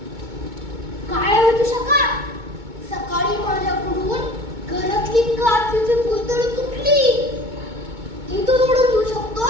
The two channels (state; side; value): late; left; 2.2 ms